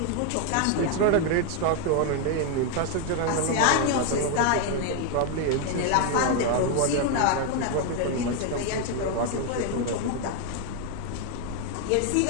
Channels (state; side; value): different; both; correlation 0.01